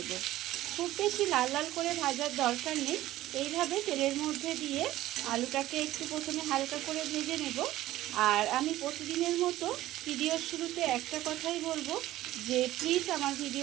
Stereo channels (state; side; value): quieter; left; 15.3 dB